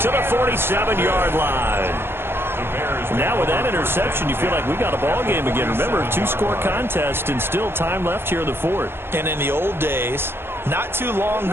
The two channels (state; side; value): late; left; 0.11 ms